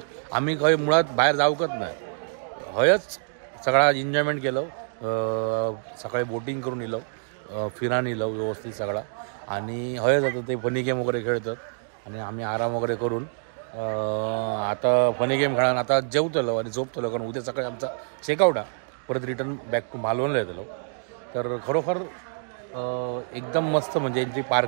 आम्ही खंय मुळात बाहेर जाऊकच नाही. हयच सगळा एन्जॉयमेंट केलं. सकाळी बोटिंग करून येलो, फिरान येलो व्यवस्थित सगळा. आणि हयच आता ते फनी गेम वगैरे खेळतात आणि आम्ही आराम वगैरे करून आता फनी गेम खेळून आता जेवतलो आणि झोपतलो. कारण उद्या सकाळी आमचा चेकआउट आहे. परत रिटर्न बॅक टू मालवणला येतलो. तर खरोखर एकदम मस्त, म्हणजे यांची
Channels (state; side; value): silent; left; digital silence